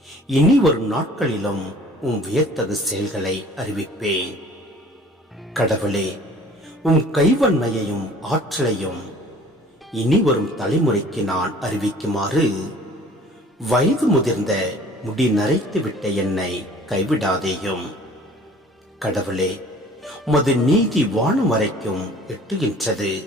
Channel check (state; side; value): normal; both; correlation 0.50